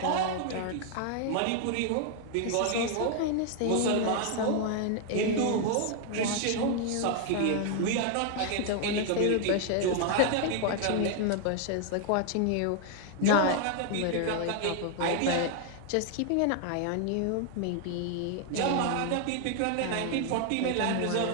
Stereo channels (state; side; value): different; both; correlation 0.00